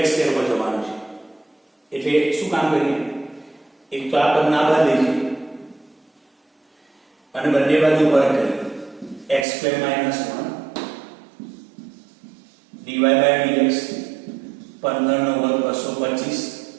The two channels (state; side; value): drops out; left; at 9.5 s